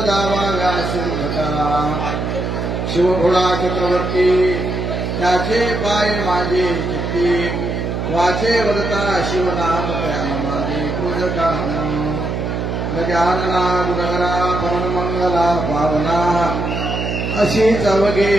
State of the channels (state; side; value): noise; right; hum, 2 dB below the sound